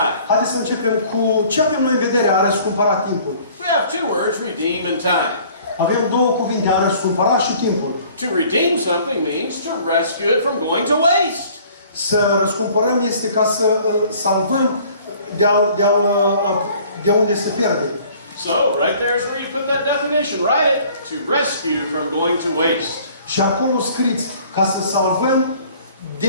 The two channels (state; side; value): inverted; both; correlation -0.53